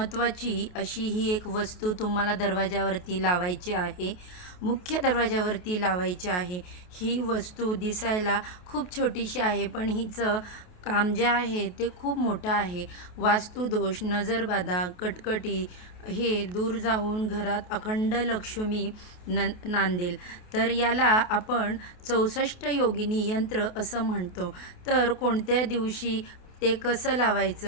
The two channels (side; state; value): right; late; 28 ms